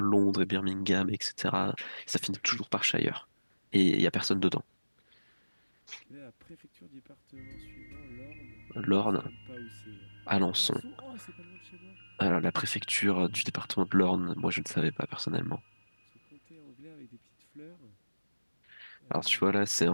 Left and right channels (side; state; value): both; inverted; correlation -1.00